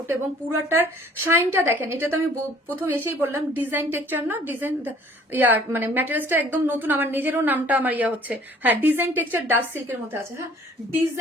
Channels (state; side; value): normal; both; correlation 0.55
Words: এবং পুরাটার শাইনটা দেখেন। এটা তো আমি প্রথম এসেই বললাম ডিজাইন টেক্সচার না, ডিজাইন মানে ম্যাটেরিয়ালসটা একদম নতুন, আমার নিজেরও নামটা আমার হচ্ছে, হ্যাঁ ডিজাইন টেক্সচার ডাস্ট সিল্কের মধ্যে আছে, হ্যাঁ